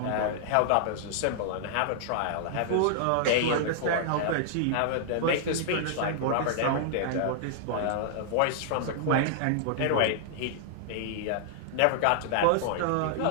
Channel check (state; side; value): different; both; correlation -0.01